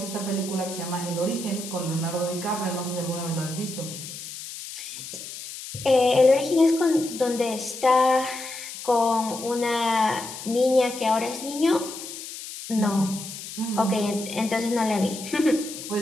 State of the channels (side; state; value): left; noise; hiss, 11 dB below the sound